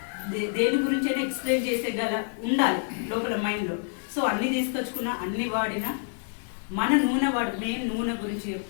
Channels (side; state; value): right; silent; digital silence